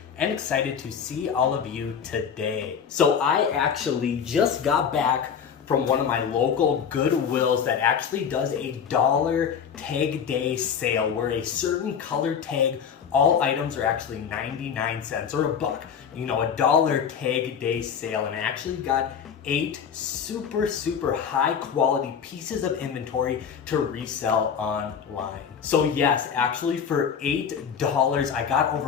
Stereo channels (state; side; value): quieter; right; 7.3 dB